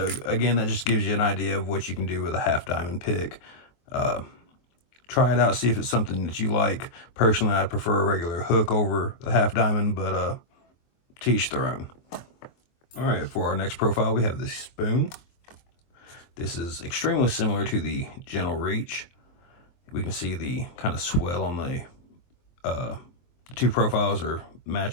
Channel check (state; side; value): late; right; 23 ms